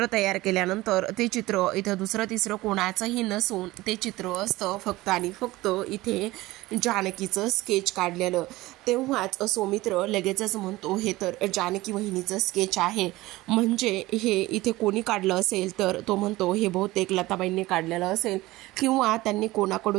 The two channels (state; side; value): quieter; left; 18.7 dB